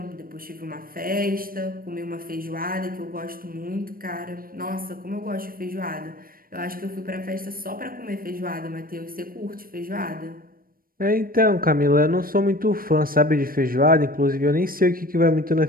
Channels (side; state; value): left; late; 0.42 ms